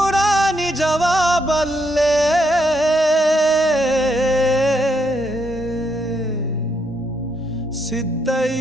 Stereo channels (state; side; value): normal; both; correlation 0.77